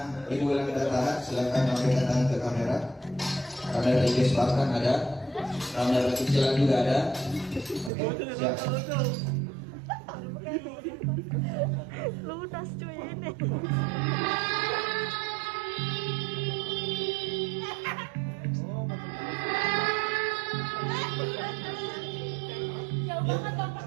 Ibu Ulan tidak tahan, silakan memberikan tangan ke kamera. Kamera IG Spartan ada, kamera kecilan juga ada. Oke, siap. Lunas cuy ini. Jauh banget dong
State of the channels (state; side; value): drops out; left; at 7.9 s